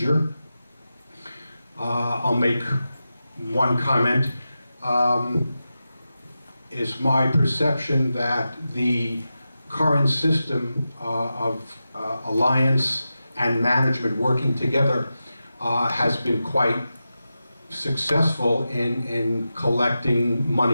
I'll make one comment. It's my perception that the current system of alliance and management working together has been quite successful in collecting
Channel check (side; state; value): both; inverted; correlation -0.92